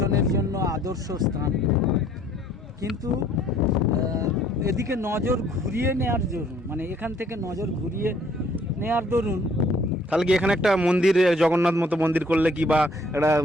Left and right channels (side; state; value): both; normal; correlation 0.60